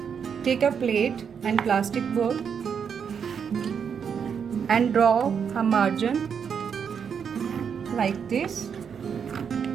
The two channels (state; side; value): quieter; left; 7.0 dB